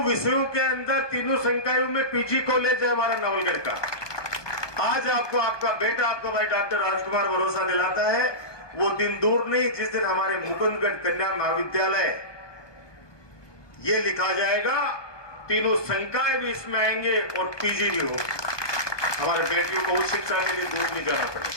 विषयों के अंदर, तीनों संकायों में पीजी कॉलेज है हमारा नवलगढ़ का। आज आपको आपका बेटा, आपका भाई डॉक्टर राजकुमार भरोसा दिलाता है। वो दिन दूर नहीं जिस दिन हमारे मुकुंदगढ़ कन्या महाविद्यालय ये लिखा जाएगा, तीनों संकाय भी इसमें आएंगे और पीजी भी होगा। हमारे बेटियों को उच्च शिक्षा के लिए दूर नहीं जाना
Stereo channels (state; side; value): late; right; 1.2 ms